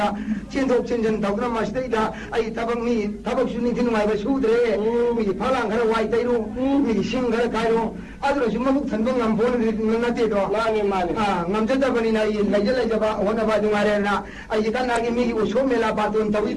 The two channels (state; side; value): identical; both; correlation 1.00